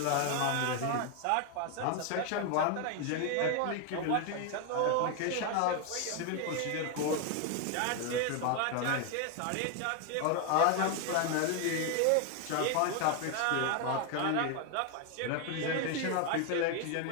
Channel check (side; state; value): both; different; correlation 0.01